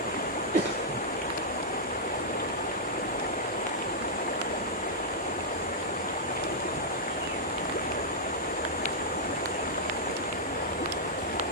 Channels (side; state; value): both; normal; correlation -0.08